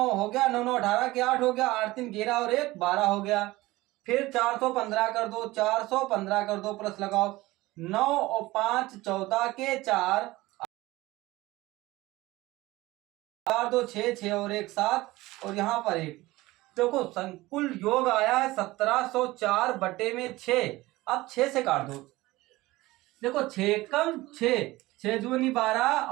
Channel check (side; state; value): left; quieter; 19.1 dB